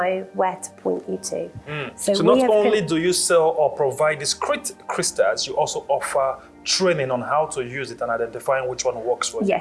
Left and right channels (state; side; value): identical; both; correlation 1.00